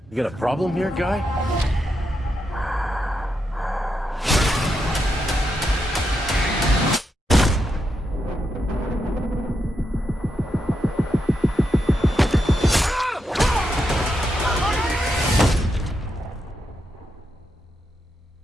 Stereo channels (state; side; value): normal; both; correlation 0.84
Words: You got a problem here, guy?